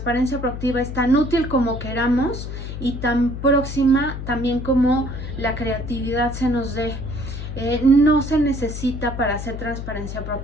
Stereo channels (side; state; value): left; noise; hum, 7 dB below the sound